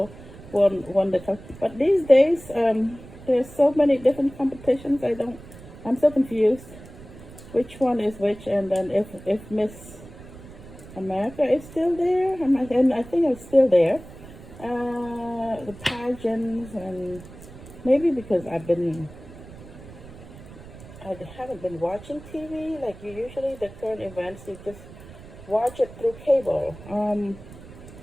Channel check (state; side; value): noise; right; rumble, 17 dB below the sound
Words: won the. But these days, there's so many different competitions. I'm so confused. Which one is which? And then if Miss America is still there, and I think it's still there. The pageants, and maybe because I haven't been watching TV like you usually. The current events, you just watch it through cable.